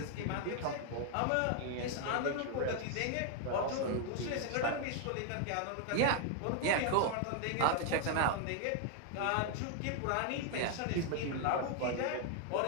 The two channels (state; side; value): different; both; correlation 0.00